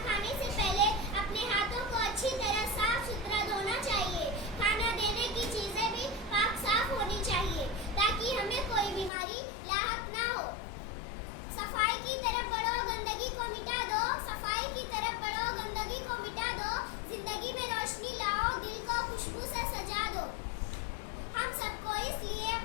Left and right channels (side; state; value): right; drops out; at 9.1 s